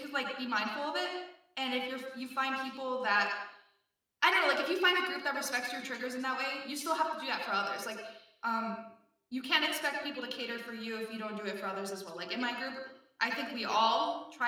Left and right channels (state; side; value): identical; both; correlation 1.00